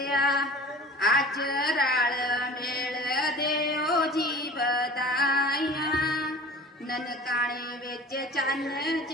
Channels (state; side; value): normal; both; correlation 0.41